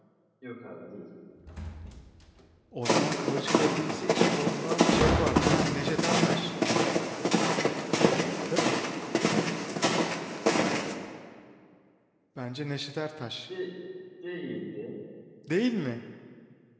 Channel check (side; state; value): both; identical; correlation 1.00